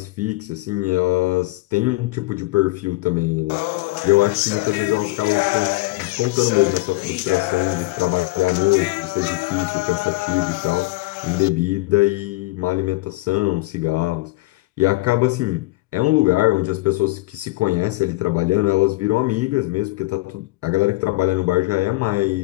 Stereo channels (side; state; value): right; quieter; 21.0 dB